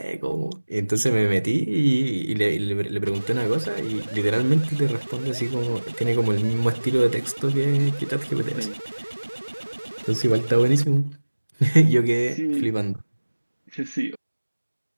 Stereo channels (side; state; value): both; inverted; correlation -1.00